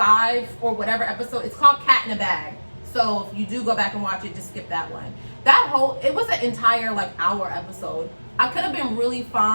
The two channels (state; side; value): inverted; both; correlation -1.00